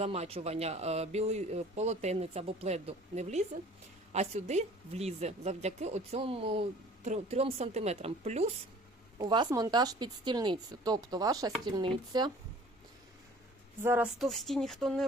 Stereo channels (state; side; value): normal; both; correlation 0.49